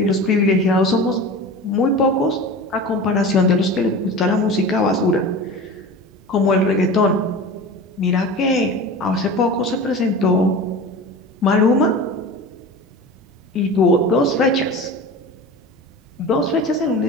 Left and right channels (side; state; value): both; normal; correlation 0.33